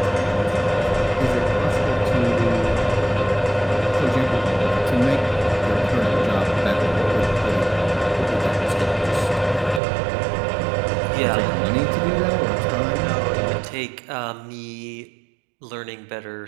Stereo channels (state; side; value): drops out; left; at 9.8 s